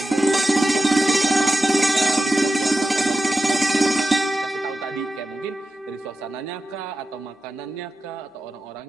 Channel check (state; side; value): normal; both; correlation 0.92